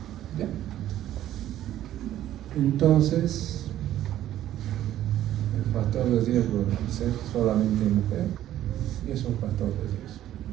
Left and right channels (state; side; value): quieter; left; 12.6 dB